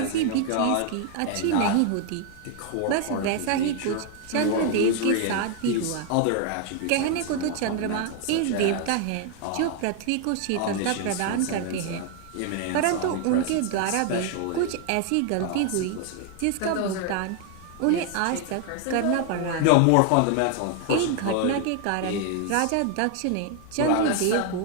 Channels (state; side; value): different; both; correlation 0.00